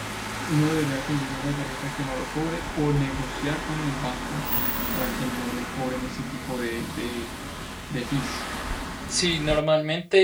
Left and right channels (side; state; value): both; identical; correlation 1.00